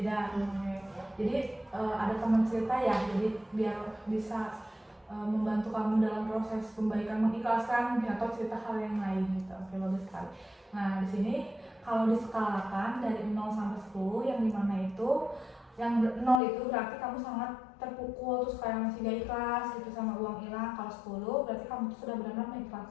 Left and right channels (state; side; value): drops out; right; at 16.4 s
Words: Jadi ada teman cerita ya, jadi biar bisa membantu kamu dalam proses pembaikan, mengikhlaskan mungkin atau cerita hal yang lain gitu. Oke, bagus sekali. Nah, di sini kalau diskalakan dari 0 sampai 10, yang dimana itu yang 0 itu berarti kamu sangat terpukul, terus kayak masih gak ikhlas gitu sama uang hilang. Kalau 10 berarti kamu tuh sudah benar-benar